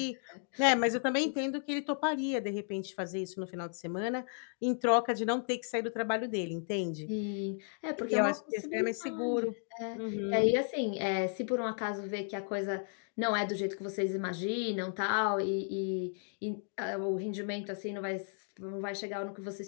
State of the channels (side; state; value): right; silent; 55 dB below the other